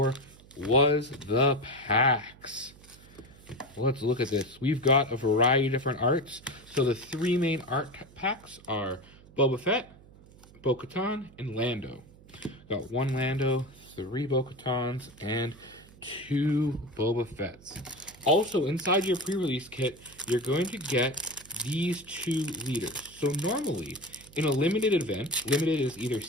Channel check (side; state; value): right; noise; hum, 23 dB below the sound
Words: was the packs. Let's look at this. We've got a variety of different arts. So the 3 main art packs are Boba Fett, Bo-Katan, and Lando. Got 1 Lando, 3 Bo-Katans, and 2 Boba Fetts. Also, inside your pre-release kit, you're going to get these 2 leaders. So normally, in a limited event, limited is either